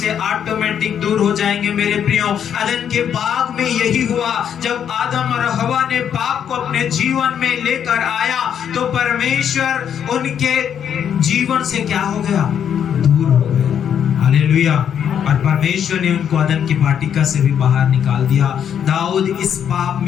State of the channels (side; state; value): right; quieter; 8.7 dB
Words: ऑटोमेटिक दूर हो जाएंगे। मेरे प्रियो, अदन के बाग में यही हुआ, जब आदम और हवा ने पाप को अपने जीवन में लेकर आया तो परमेश्वर उनके जीवन से क्या हो गया, दूर हो गया, हालेलुया। और परमेश्वर ने उनको अदन की वाटिका से भी बाहर निकाल दिया। दाऊद इस पाप